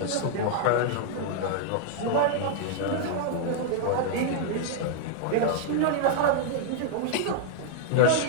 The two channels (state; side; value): different; both; correlation -0.01